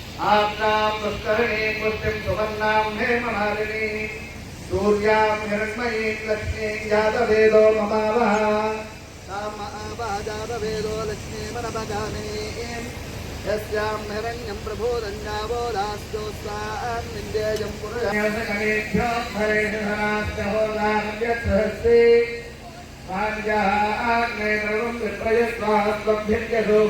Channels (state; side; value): identical; both; correlation 1.00